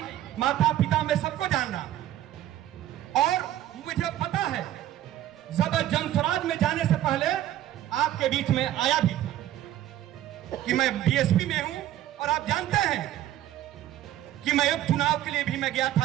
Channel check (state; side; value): quieter; left; 12.9 dB